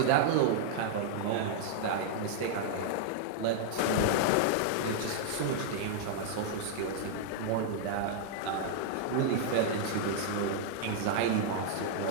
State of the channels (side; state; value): both; different; correlation -0.01